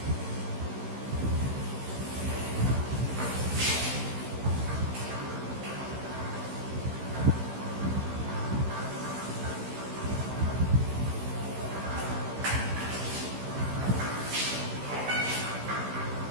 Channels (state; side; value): late; left; 15 ms